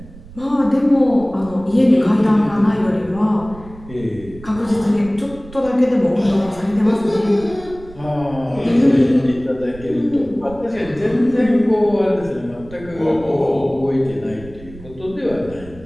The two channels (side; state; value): right; noise; rumble, 18 dB below the sound